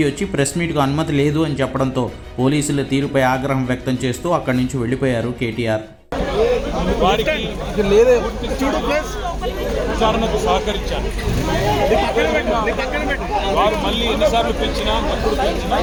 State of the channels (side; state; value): both; identical; correlation 1.00